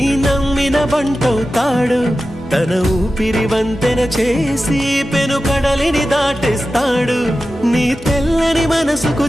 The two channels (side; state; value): both; normal; correlation 0.93